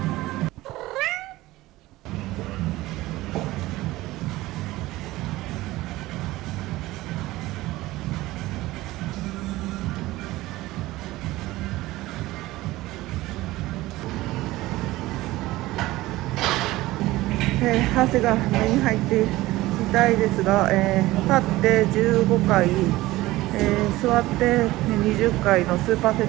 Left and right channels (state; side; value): quieter; left; 18.0 dB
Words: 汗が目に入って痛いですが、立って15回、座って20回のスーパーセ